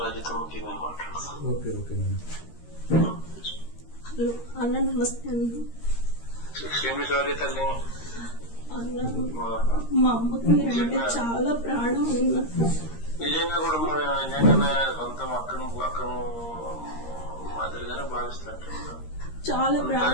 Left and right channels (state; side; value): late; right; 13 ms